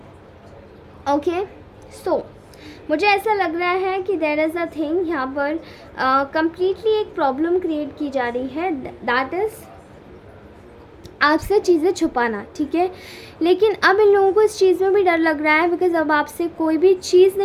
ओके, सो मुझे ऐसा लग रहा है कि देयर इज़ अ थिंग यहाँ पर कम्प्लीटली एक प्रॉब्लम क्रिएट की जा रही है, दैट इज़ आपसे चीज़ें छुपाना। ठीक है, लेकिन अब इन लोगों को इस चीज़ में भी डर लग रहा है, बिकॉज़ अब आपसे कोई भी चीज़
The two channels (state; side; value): identical; both; correlation 1.00